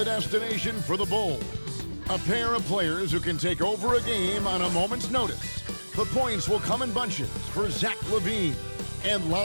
destination for the Bulls. A pair of players who can take over a game on a moment's notice. The points will come in bunches for Zach LaVine and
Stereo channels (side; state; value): both; inverted; correlation -1.00